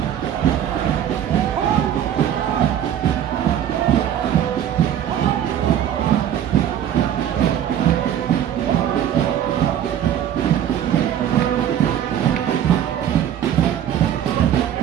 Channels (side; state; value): left; quieter; 10.3 dB